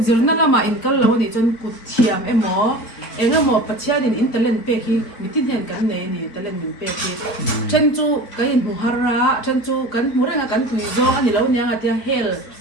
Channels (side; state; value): right; late; 4.5 ms